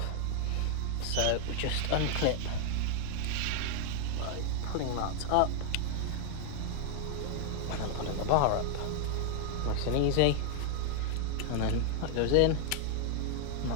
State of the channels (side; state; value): both; different; correlation 0.00